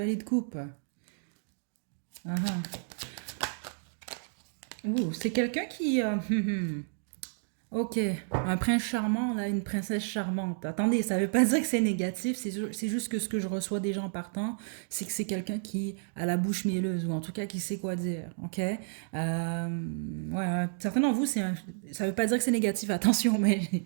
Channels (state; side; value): silent; left; digital silence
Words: de coupe. Ah, ah. Ouh, c'est quelqu'un qui... ok, un prince charmant, là, une princesse charmante. Attendez, ça veut pas dire que c'est négatif, c'est juste que ce que je reçois des gens partant, c'est que c'est quelqu'un qui a la bouche mielleuse, ou en tout cas qui sait quoi dire, ok? Ouais, certains d'entre vous, ça veut pas dire que c'est négatif, attention, mais